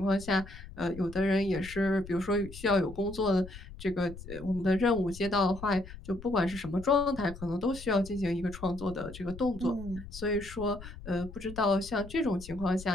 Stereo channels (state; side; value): noise; left; rumble, 14 dB below the sound